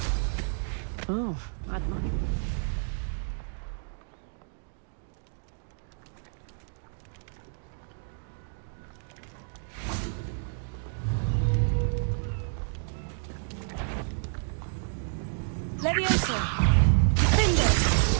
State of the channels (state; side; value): silent; left; digital silence